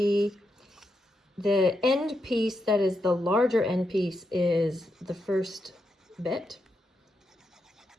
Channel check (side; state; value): both; normal; correlation 0.84